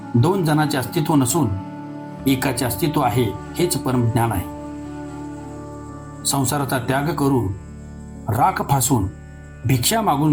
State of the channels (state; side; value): identical; both; correlation 1.00